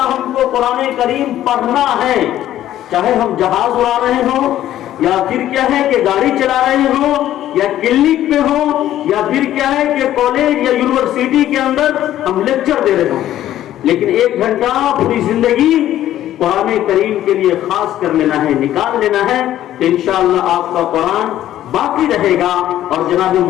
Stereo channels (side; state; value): right; quieter; 12.6 dB